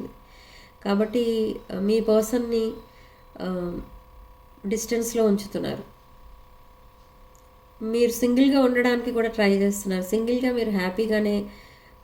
కాబట్టి మీ పర్సన్ని డిస్టెన్స్లో ఉంచుతున్నారు. మీరు సింగిల్గా ఉండడానికి కూడా ట్రై చేస్తున్నారు. సింగిల్గా మీరు హ్యాపీగానే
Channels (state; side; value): identical; both; correlation 1.00